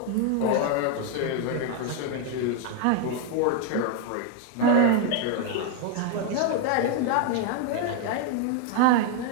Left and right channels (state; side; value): different; both; correlation 0.01